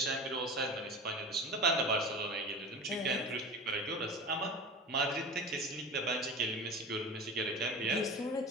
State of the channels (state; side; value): normal; both; correlation 0.32